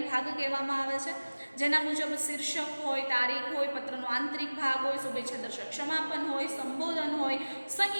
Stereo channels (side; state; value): both; inverted; correlation -1.00